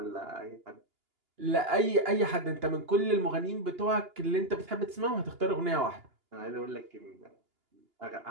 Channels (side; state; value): left; late; 2.9 ms